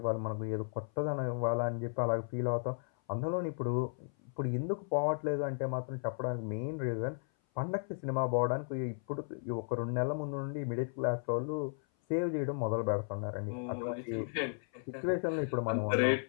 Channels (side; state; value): right; silent; 55 dB below the other